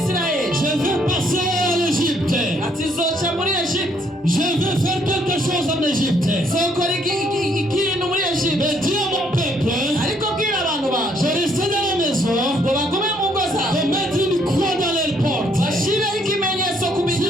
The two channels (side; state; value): both; normal; correlation 0.68